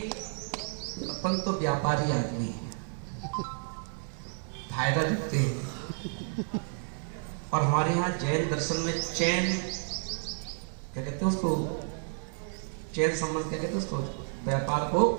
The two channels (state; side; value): silent; left; 57 dB below the other